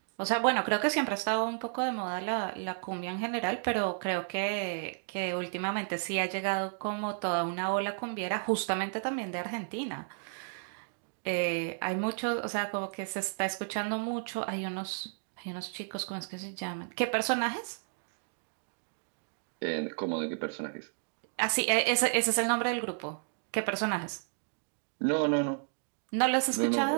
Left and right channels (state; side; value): silent; left; digital silence